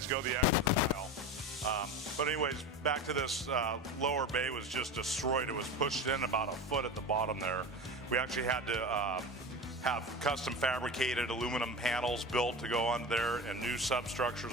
go the extra mile. But anyways, back to this lower bay was just destroyed. It was pushed in about a foot at the bottom there. We actually had to have custom fabricated aluminum panels built to go on there, and new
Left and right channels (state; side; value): normal; both; correlation 0.28